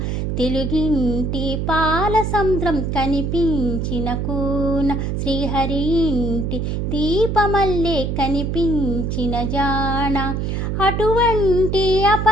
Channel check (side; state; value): right; noise; hum, 1 dB below the sound